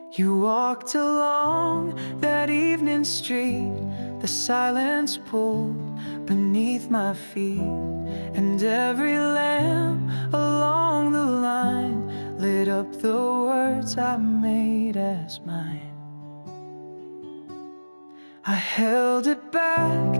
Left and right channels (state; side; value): inverted; both; correlation -1.00